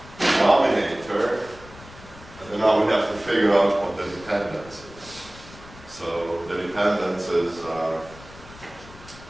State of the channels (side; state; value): left; noise; rumble, 19 dB below the sound